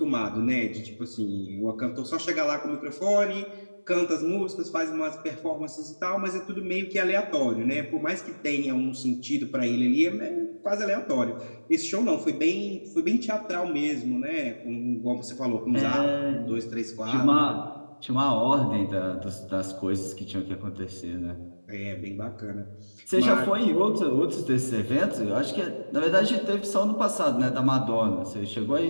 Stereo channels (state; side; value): inverted; both; correlation -1.00